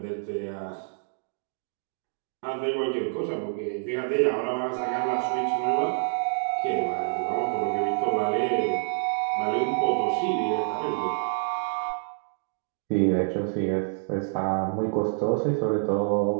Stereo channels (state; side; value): silent; left; digital silence